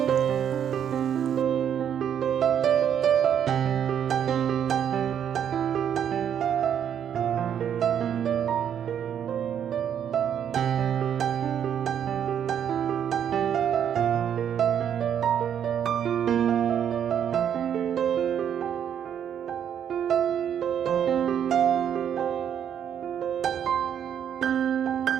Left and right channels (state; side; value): quieter; left; 9.0 dB